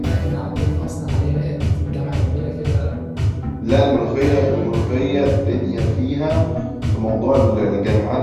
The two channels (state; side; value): identical; both; correlation 1.00